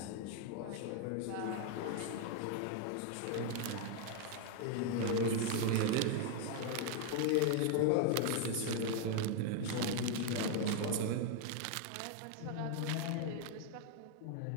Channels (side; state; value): both; different; correlation 0.00